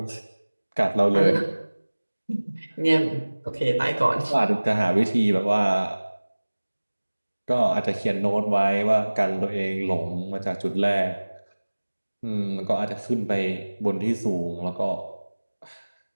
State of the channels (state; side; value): inverted; both; correlation -1.00